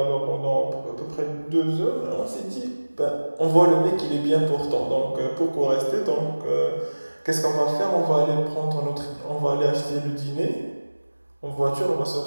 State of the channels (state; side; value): inverted; both; correlation -1.00